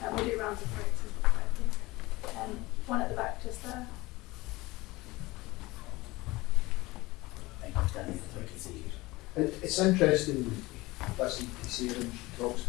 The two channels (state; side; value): quieter; right; 20.8 dB